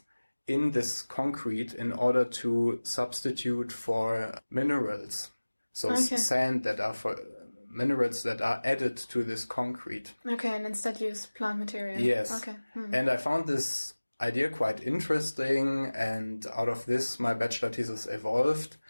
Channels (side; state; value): both; inverted; correlation -1.00